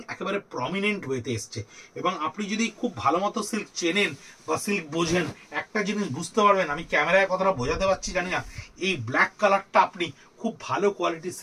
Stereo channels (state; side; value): identical; both; correlation 1.00